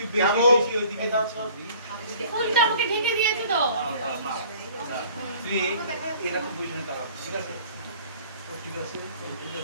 বেশি ওইদিকে দাও তো। ফুলটা আমাকে ঢেকে দিয়েছে তো। তুই এরকম বুঝবি না, ঠিক আছে? ঠিক আছে, ঠিক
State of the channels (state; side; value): inverted; both; correlation -0.52